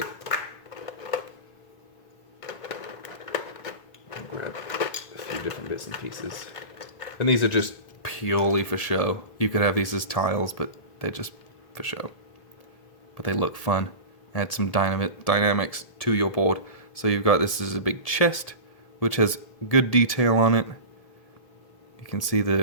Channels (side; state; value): right; late; 1.7 ms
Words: I'll grab a few different bits and pieces. And these are just purely for show. You could have these as tiles, but they're just for show. But they look fun. Add some dynamics to your board. So you've got, this is a big chest, which has good detail on it. You can see